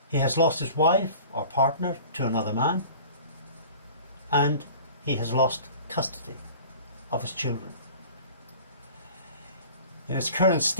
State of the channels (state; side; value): inverted; both; correlation -0.43